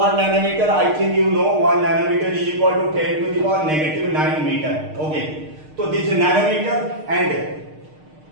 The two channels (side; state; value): left; late; 6.5 ms